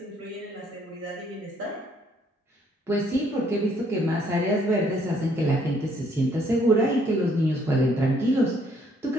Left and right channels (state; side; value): normal; both; correlation 0.66